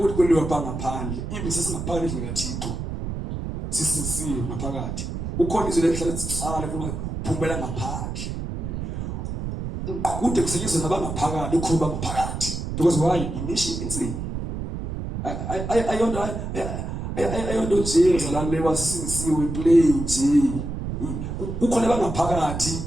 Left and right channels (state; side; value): noise; right; rumble, 5 dB below the sound